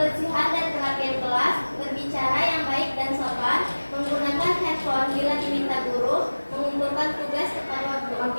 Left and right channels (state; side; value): inverted; both; correlation -1.00